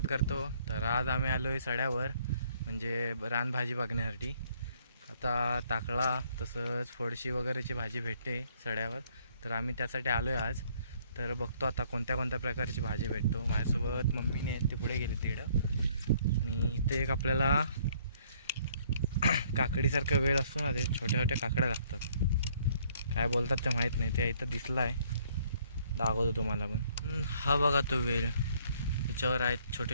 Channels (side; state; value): both; inverted; correlation -0.63